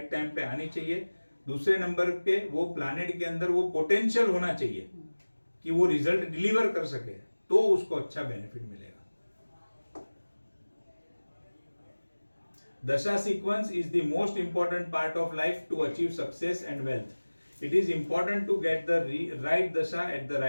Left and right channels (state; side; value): inverted; both; correlation -1.00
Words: टाइम पे आनी चाहिए। दूसरे नंबर पे वो प्लैनेट के अंदर वो पोटेंशियल होना चाहिए कि वो रिजल्ट डिलीवर कर सके, तो उसको अच्छा बेनिफिट मिलेगा। Dasha sequence is the most important part of life to achieve success and wealth. It is important to get the right dasha at the